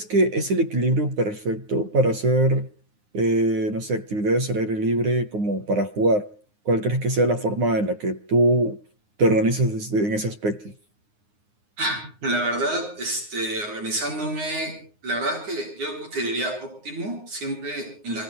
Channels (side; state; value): left; late; 9.6 ms